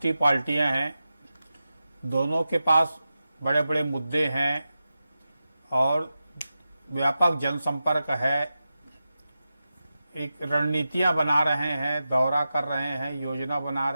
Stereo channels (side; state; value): both; inverted; correlation -0.92